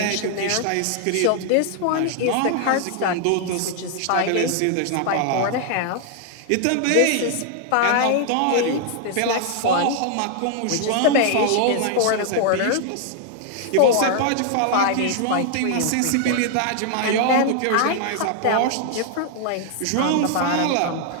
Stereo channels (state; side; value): different; both; correlation 0.00